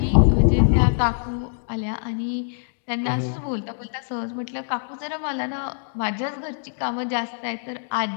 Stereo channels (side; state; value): right; silent; digital silence